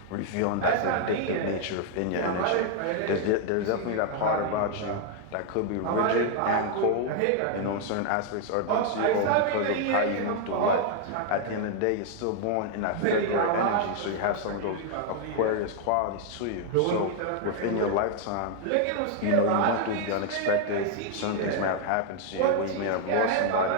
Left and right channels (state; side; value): different; both; correlation 0.00